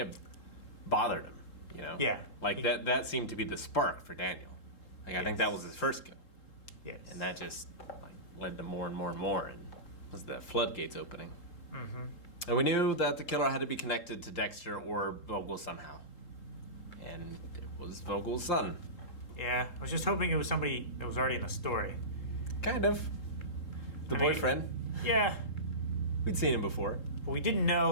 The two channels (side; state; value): right; late; 3.7 ms